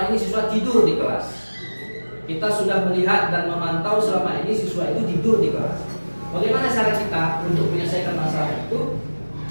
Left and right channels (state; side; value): inverted; both; correlation -1.00